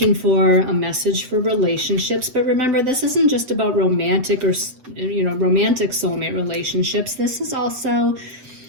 for a message for relationships, but remember, this isn't just about romantic or romantic soulmate relationships. This is also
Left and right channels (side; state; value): left; late; 7.9 ms